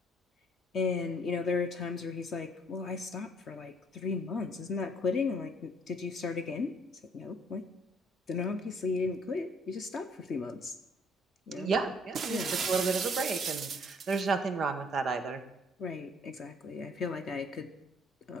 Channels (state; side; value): normal; both; correlation 0.62